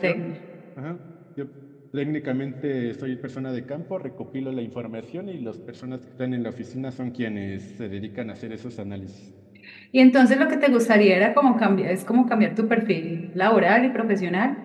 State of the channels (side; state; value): both; identical; correlation 1.00